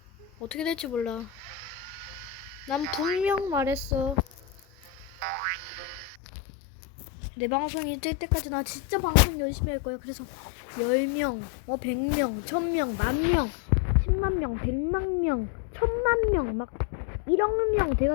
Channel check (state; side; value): drops out; right; at 6.2 s